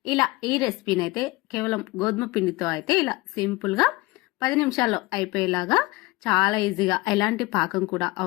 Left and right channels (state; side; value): quieter; right; 21.7 dB